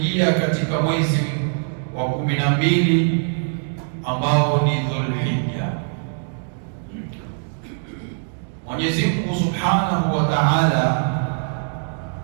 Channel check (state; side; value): silent; left; 64 dB below the other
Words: katika mwezi wa 12 ambao ni Dhulhijja. Mwenyezi Mungu Subhanahu wa Ta'ala